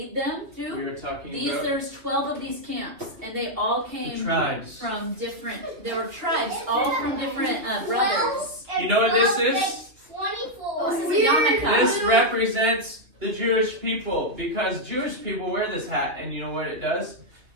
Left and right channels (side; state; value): left; late; 2.5 ms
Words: them through. We were talking these, about there's 12 of these camps, and they all came from different, there were tribes, all from different brothers. You know what this is? 24. This is a yarmulke. This represents the Jewish people, because Jewish people wear this hat, and you know what it does?